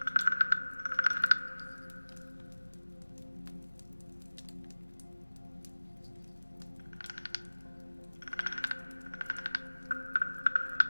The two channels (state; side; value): inverted; both; correlation -1.00